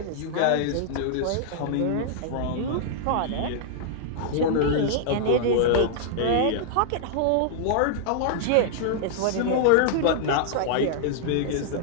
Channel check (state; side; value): different; both; correlation -0.01